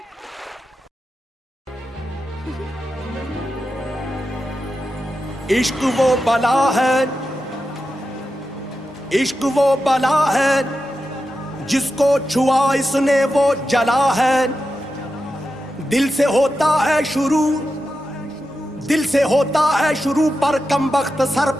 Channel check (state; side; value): normal; both; correlation 0.90